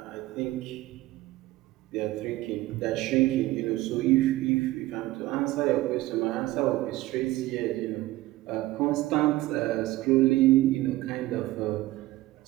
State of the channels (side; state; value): left; quieter; 17.5 dB